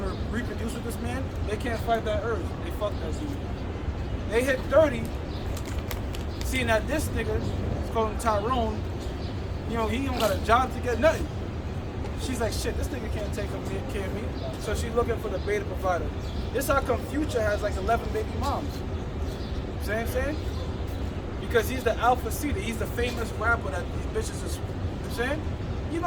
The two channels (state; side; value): identical; both; correlation 1.00